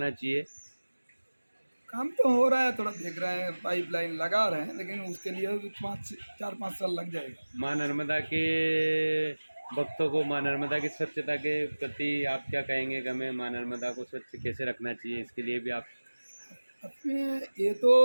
चाहिए। काम तो हो रहा है, थोड़ा देख रहे हैं, पाइपलाइन लगा रहे हैं, लेकिन उसके लिए भी 4-5 साल लग जाएगा। माँ नर्मदा के भक्तों को माँ नर्मदा की स्वच्छता के प्रति आप क्या कहेंगे कि हमें माँ नर्मदा को स्वच्छ कैसे रखना चाहिए? इसके लिए भी आप अपने ये तो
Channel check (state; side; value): inverted; both; correlation -1.00